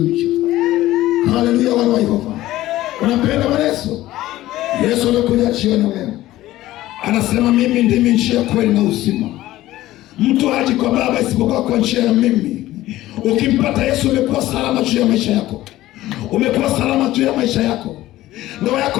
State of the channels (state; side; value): quieter; right; 15.7 dB